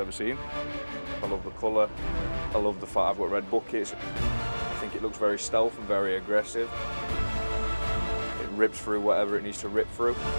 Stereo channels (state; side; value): inverted; both; correlation -1.00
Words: seen. I love the colour, I love the fact I've got red buckets. I think it looks very stealth and very aggressive. It rips through whatever it needs to rip through.